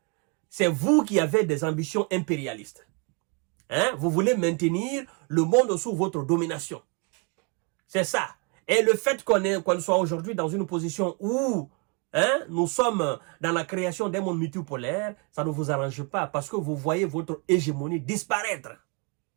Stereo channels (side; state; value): left; quieter; 33.5 dB